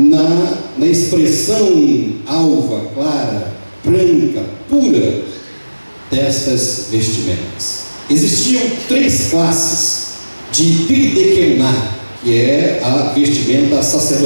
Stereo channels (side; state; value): both; inverted; correlation -1.00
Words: expressão alva, clara, branca, pura destas vestimentas. Existiam 3 classes de Bigdekená, que é a vestimenta